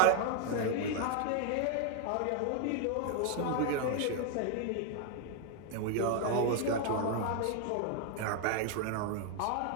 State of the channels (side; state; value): both; different; correlation 0.00